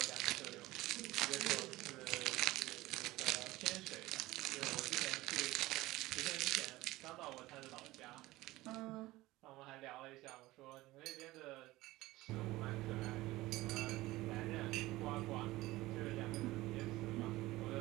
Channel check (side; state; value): left; quieter; 18.4 dB